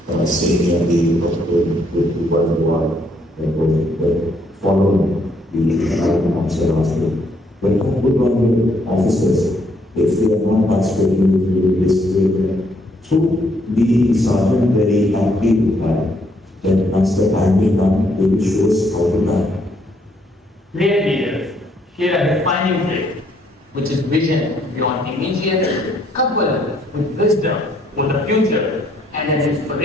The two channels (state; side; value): normal; both; correlation 0.70